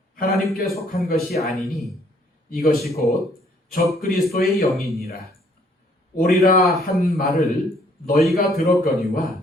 하나님께 속한 것이 아니니 이것이 곧 적그리스도의 영이니라. 오리라 한 말을 너희가 들었거니와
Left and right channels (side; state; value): both; normal; correlation 0.64